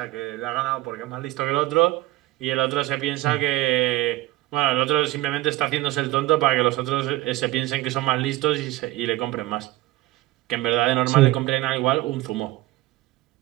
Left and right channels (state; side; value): quieter; left; 17.9 dB